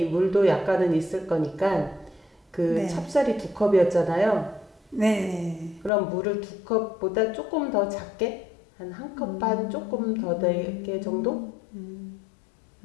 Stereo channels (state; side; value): drops out; right; at 5.9 s